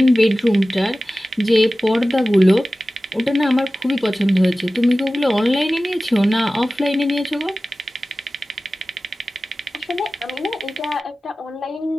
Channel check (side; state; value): both; normal; correlation 0.96